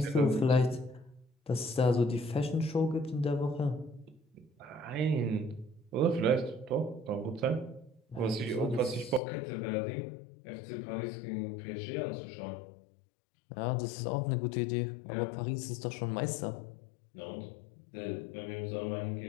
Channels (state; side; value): drops out; right; at 9.2 s